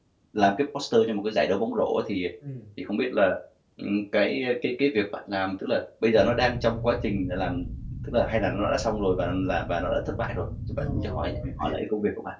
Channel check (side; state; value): both; identical; correlation 1.00